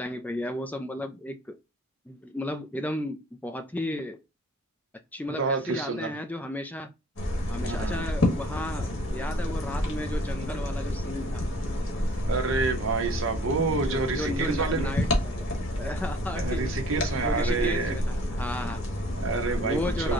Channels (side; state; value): both; normal; correlation 0.53